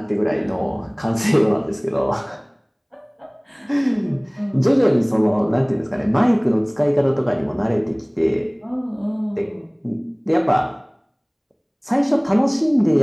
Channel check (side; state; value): both; identical; correlation 1.00